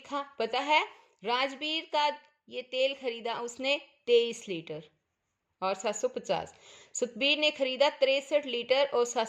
पता है? राजवीर का ये तेल खरीदा उसने 23 लीटर और 750। सतबीर ने खरीदा 63 लीटर और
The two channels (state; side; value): identical; both; correlation 1.00